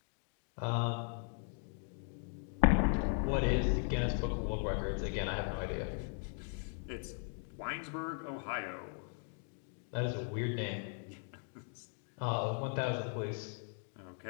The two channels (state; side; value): silent; right; 52 dB below the other